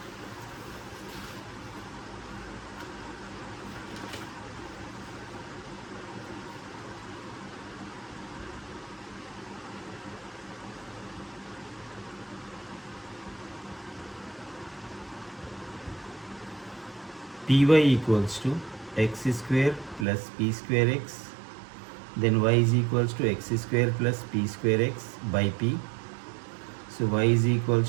Py equals to x square plus p square x, then y is equals to x square plus p square x by p. So y is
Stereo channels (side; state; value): left; drops out; at 20.1 s